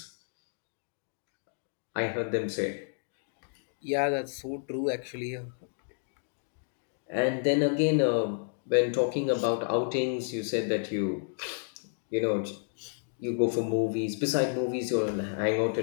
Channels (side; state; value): right; silent; digital silence